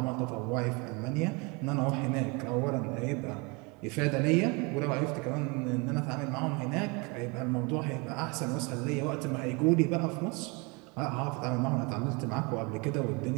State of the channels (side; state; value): left; quieter; 29.0 dB